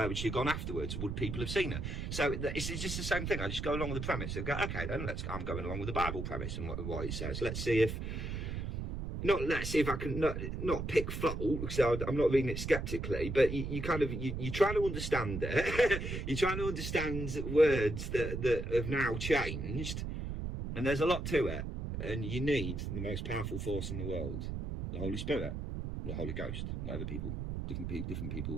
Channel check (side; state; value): right; noise; rumble, 4 dB below the sound